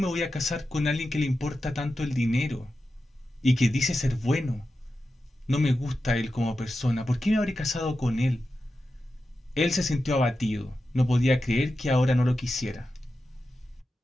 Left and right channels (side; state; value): both; normal; correlation 0.91